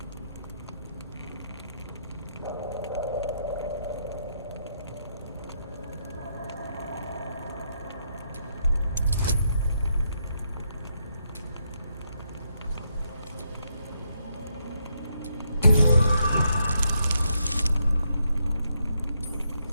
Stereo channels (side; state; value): both; inverted; correlation -0.78